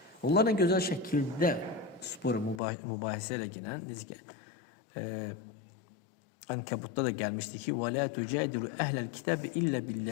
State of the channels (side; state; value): right; drops out; at 2.6 s